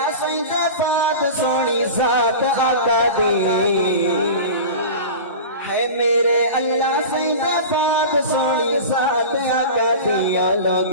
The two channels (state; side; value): inverted; both; correlation -0.32